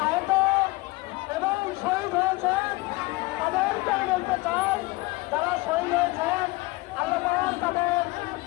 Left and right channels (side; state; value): right; quieter; 22.5 dB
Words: আহত এবং শহীদ হয়েছেন তাদেরকে বলতে চাই, যারা শহীদ হয়েছেন আল্লাহ তাদের